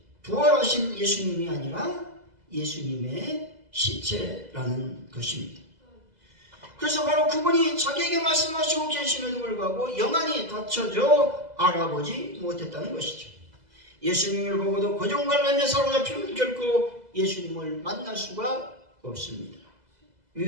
부활하신 예수님이 아니라 예수님의 시체라는 것입니다. 그래서 바로 그분이 자기에게 말씀하시고 계심에도 불구하고 영안이 닫혀져 알아보지 못했다는 것이죠. 예수님을 보고도 고정관념에 사로잡히면 결코 예수님을 만날 수가 없습니다.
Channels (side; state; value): left; late; 2.0 ms